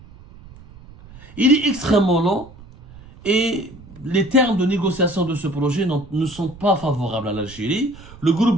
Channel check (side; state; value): right; noise; rumble, 20 dB below the sound